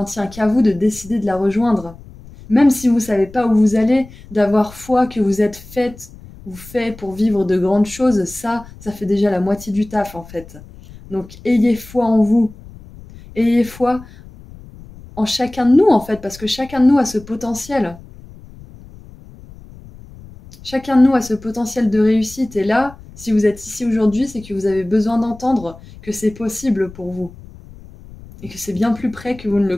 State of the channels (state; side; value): noise; left; rumble, 19 dB below the sound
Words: tient qu'à vous de décider de la rejoindre. Même si vous ne savez pas où vous allez, d'avoir foi que vous êtes faite ou fait pour vivre de grandes choses, ça fait déjà la moitié du taf en fait. Donc ayez foi en vous, ayez foi en chacun de nous en fait, parce que chacun de nous a ce potentiel. Chacun de nous a ce potentiel de réussite et là, si vous êtes ici aujourd'hui, c'est que vous avez besoin d'entendre que c'est possible pour vous et que c'est bien plus près que vous ne le